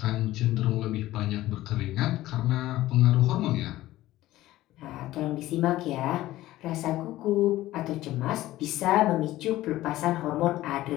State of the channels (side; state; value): right; quieter; 15.8 dB